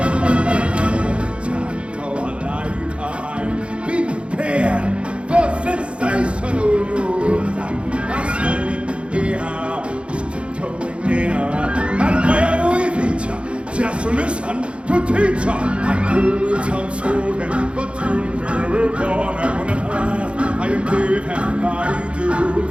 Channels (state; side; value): late; left; 0.059 ms